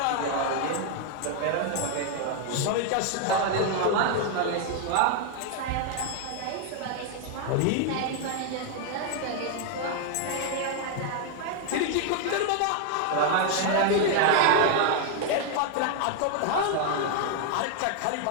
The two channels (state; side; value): different; both; correlation 0.00